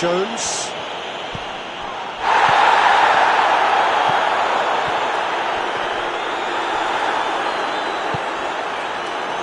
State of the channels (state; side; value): identical; both; correlation 1.00